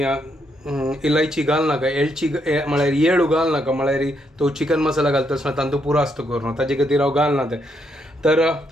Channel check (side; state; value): both; normal; correlation 0.76